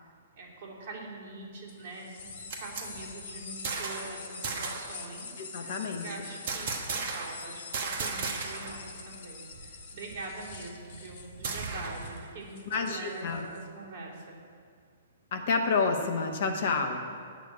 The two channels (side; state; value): both; inverted; correlation -0.48